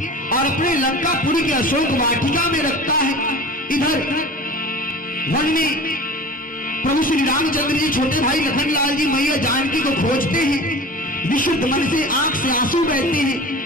और अपने लंकापुरी के अशोक वाटिका में रखता है, इधर वन में प्रभु श्री रामचंद्र जी छोटे भाई लखनलाल जी मैया जानकी को खोजते हैं। विशुद्ध मन से आंख से आंसू बहते हैं।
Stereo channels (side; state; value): both; normal; correlation 0.38